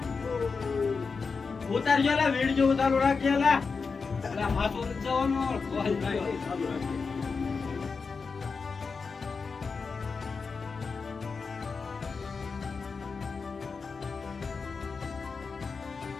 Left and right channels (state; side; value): quieter; right; 4.9 dB